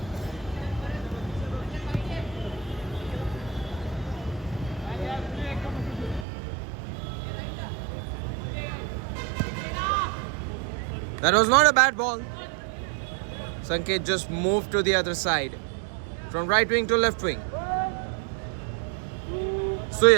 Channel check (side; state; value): left; drops out; at 6.2 s